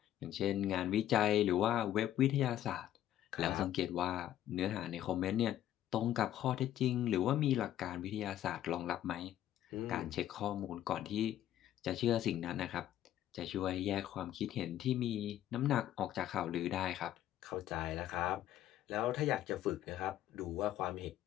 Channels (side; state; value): right; quieter; 12.2 dB